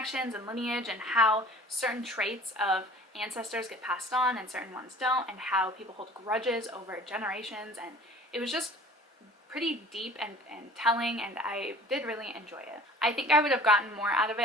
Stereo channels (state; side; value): normal; both; correlation 0.47